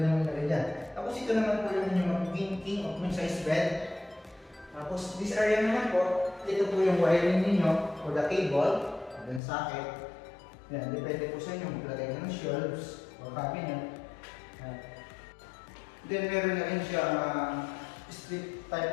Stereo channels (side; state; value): right; drops out; at 9.4 s